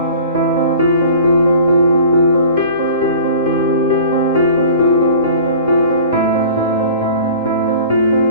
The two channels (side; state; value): both; inverted; correlation -0.45